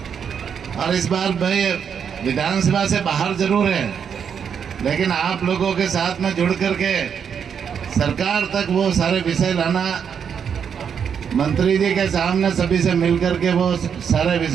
और इस बार भाई विधानसभा से बाहर जरूर है लेकिन आप लोगों के साथ में जुड़ करके सरकार तक वो सारे विषय लाना, मंत्री जी के सामने सभी से मिल करके वो सारे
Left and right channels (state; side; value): quieter; left; 7.4 dB